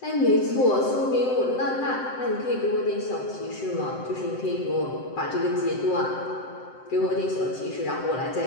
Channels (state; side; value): late; right; 7.8 ms